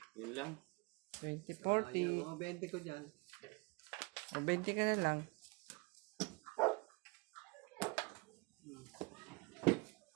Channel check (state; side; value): quieter; left; 28.0 dB